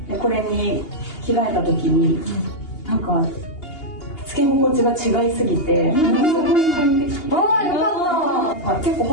でこれに着替えた時になんかつけ心地が違いすぎて、すごい快適。よかった。結構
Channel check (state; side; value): late; right; 2.8 ms